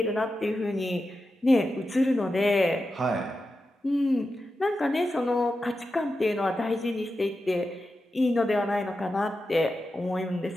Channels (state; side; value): normal; both; correlation 0.90